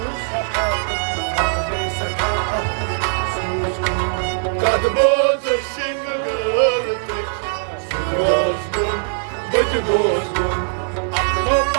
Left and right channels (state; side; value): silent; left; digital silence